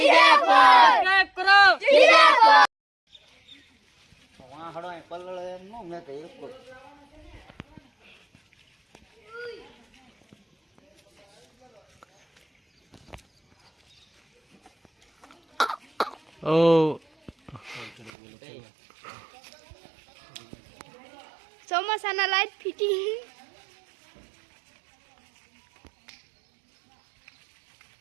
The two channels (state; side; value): drops out; left; at 18.1 s